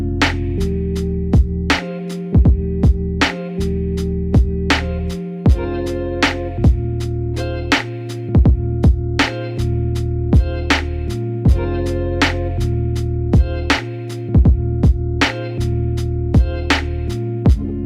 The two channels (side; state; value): both; identical; correlation 1.00